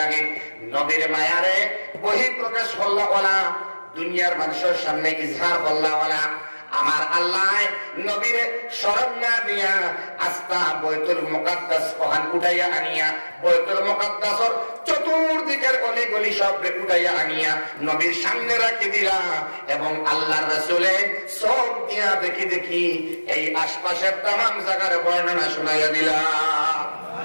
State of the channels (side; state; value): both; inverted; correlation -1.00